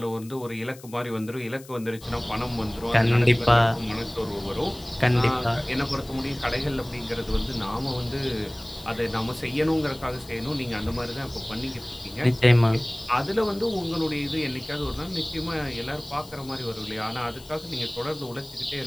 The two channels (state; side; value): noise; left; hiss, 20 dB below the sound